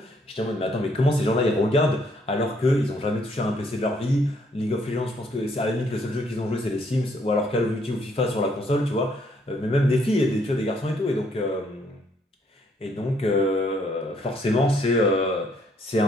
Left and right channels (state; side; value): normal; both; correlation 0.68